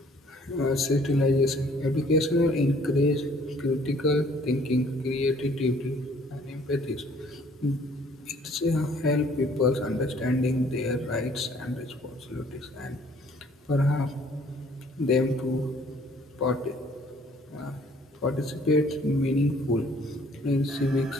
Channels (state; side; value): normal; both; correlation 0.58